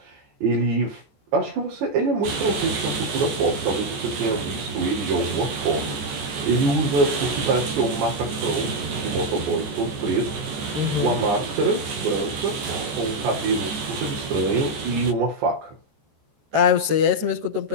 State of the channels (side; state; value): left; late; 14 ms